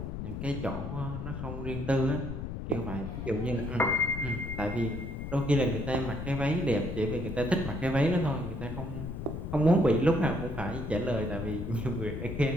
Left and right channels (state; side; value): noise; left; rumble, 6 dB below the sound